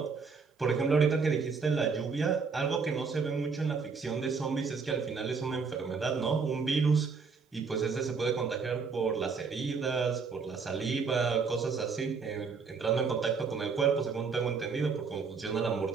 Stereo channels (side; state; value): left; quieter; 5.2 dB